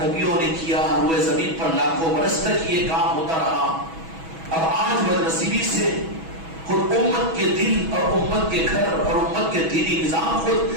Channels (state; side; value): late; left; 6.2 ms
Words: نبیوں نے کیا، روئے زمین پر لاکھوں برس تک یہ کام ہوتا رہا۔ اب آج بدنصیبی سے خود امت کے دل اور امت کے گھر اور امت کے دینی نظام خود